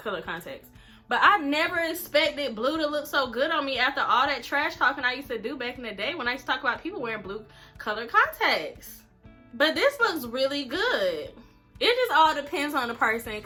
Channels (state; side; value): identical; both; correlation 1.00